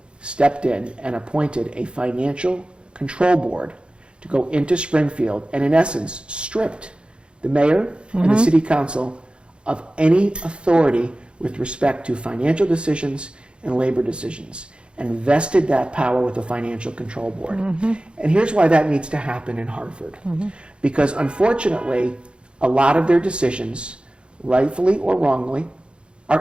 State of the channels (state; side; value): late; left; 0.055 ms